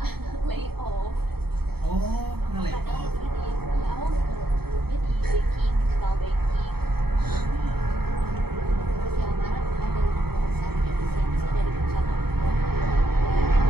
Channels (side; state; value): left; late; 0.96 ms